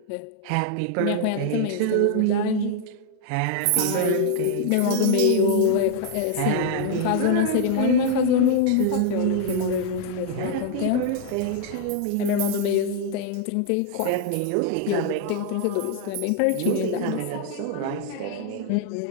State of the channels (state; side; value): different; both; correlation 0.00